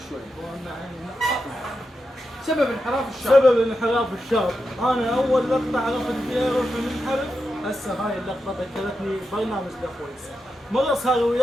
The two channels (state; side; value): normal; both; correlation 0.88